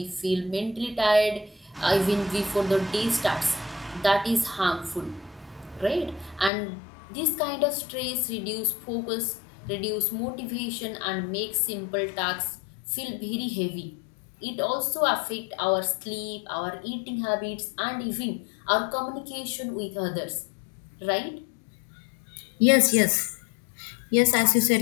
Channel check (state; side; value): drops out; right; at 6.5 s